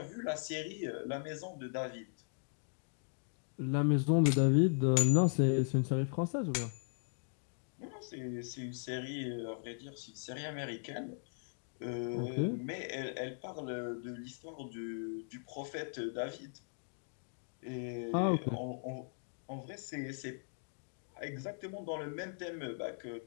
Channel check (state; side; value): silent; right; digital silence